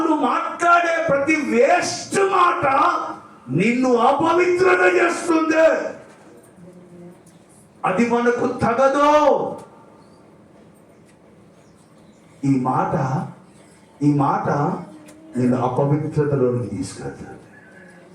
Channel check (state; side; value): identical; both; correlation 1.00